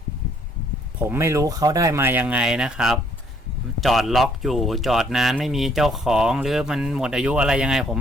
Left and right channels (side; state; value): both; normal; correlation 0.65